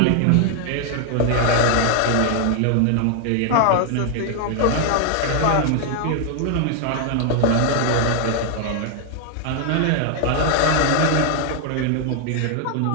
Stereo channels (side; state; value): both; different; correlation 0.00